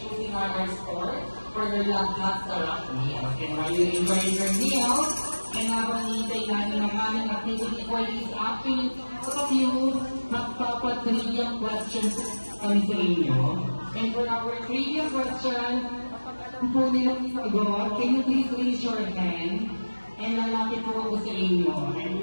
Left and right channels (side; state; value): both; inverted; correlation -1.00